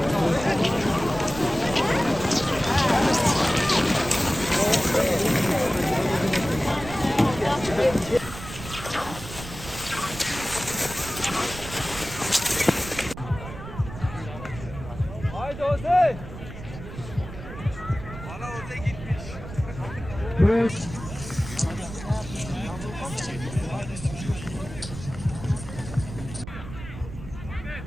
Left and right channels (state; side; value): noise; right; rumble, 12 dB below the sound